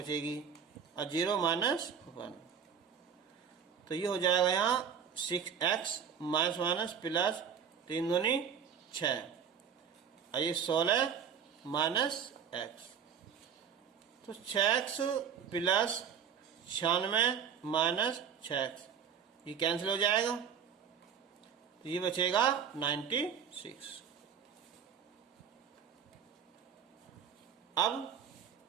और 0 माइनस 1, तो ये हो जाएगा यहाँ 6x माइनस माइनस प्लस 3 दूनी 6, और ये 16 माइनस x, तो 6x प्लस 96 माइनस 6x ये कैंसिल हो जाएगा, तो ये बचेगा 96। अब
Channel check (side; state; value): left; quieter; 7.5 dB